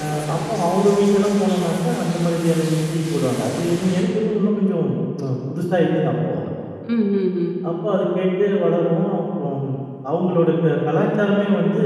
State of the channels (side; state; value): both; identical; correlation 1.00